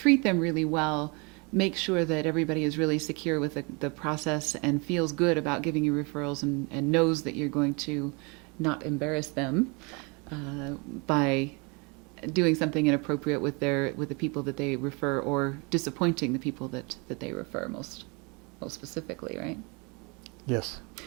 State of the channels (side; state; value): left; quieter; 30.5 dB